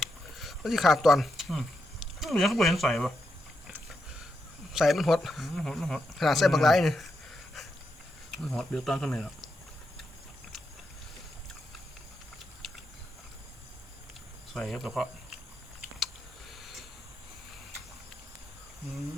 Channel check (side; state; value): both; normal; correlation 0.84